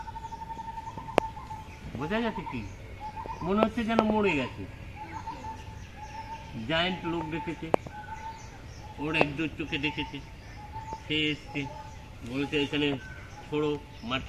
বোঝা গেছে কি? মনে হচ্ছে যেন মরে গেছে। জায়েন্ট লোক দেখেছে, ওর একদম চোখে দেখেছে। সে এসছে, বলছে এখানে ছোড়ো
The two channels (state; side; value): identical; both; correlation 1.00